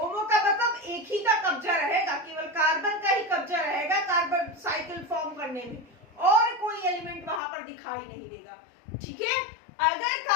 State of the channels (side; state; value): right; drops out; at 7.4 s